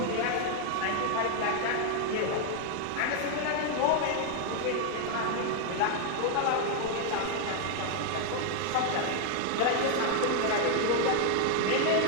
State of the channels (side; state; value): both; different; correlation 0.00